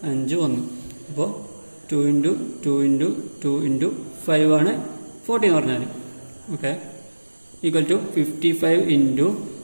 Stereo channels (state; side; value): inverted; both; correlation -1.00